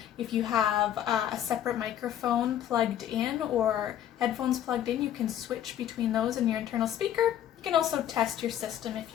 If you have a separate microphone plugged in or headphones plugged in, you can switch between those and your internal speaker. You can also test your system if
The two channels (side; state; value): right; quieter; 10.9 dB